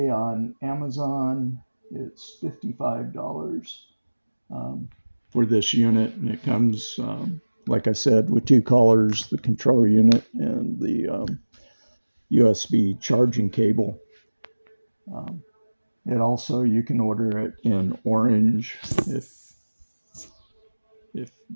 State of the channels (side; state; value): both; inverted; correlation -1.00